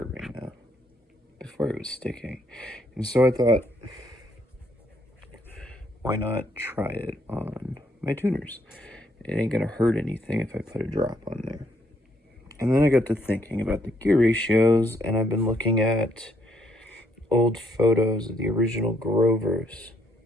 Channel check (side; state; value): both; normal; correlation 0.71